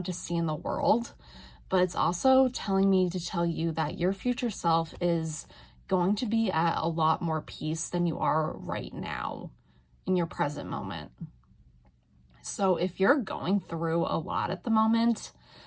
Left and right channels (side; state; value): both; identical; correlation 1.00